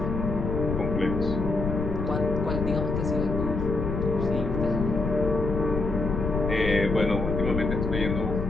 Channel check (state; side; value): noise; left; rumble, 3 dB below the sound